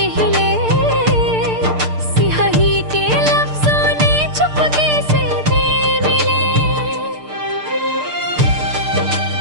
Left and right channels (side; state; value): left; late; 6.7 ms